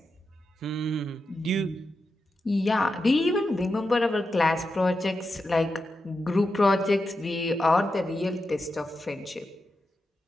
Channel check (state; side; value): normal; both; correlation 0.88